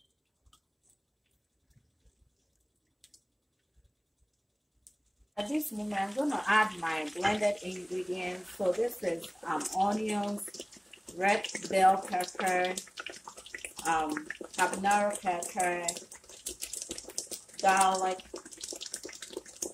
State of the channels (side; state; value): both; identical; correlation 1.00